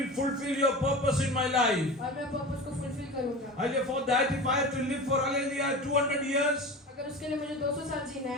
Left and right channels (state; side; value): normal; both; correlation 0.31